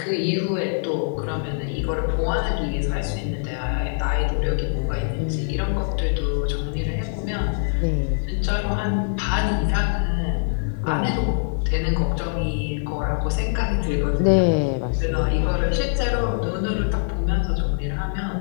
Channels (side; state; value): right; silent; digital silence